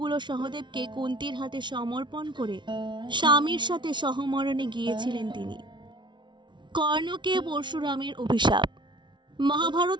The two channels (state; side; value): late; left; 0.23 ms